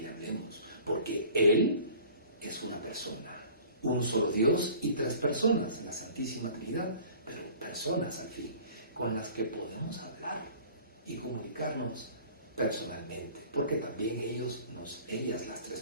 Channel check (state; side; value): inverted; both; correlation -0.47